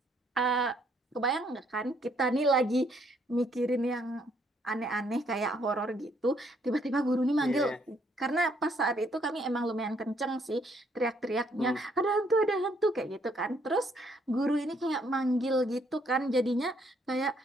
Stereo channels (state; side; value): normal; both; correlation 0.69